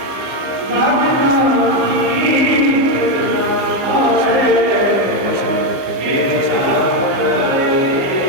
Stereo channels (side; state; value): left; late; 15 ms